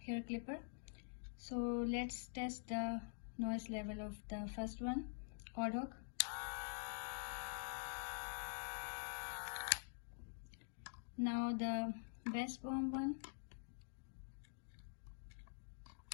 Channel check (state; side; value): silent; right; digital silence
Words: hair clipper. So let's test the noise level of the first one, Audoc. Now the BESTBOMG one.